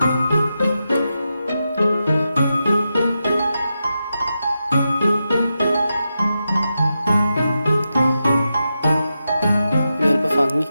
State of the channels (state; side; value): inverted; both; correlation -0.89